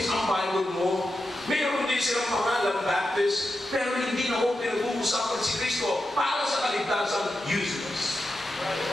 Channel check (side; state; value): both; normal; correlation 0.89